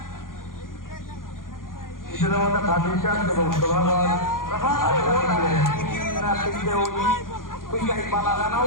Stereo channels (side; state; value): right; late; 0.90 ms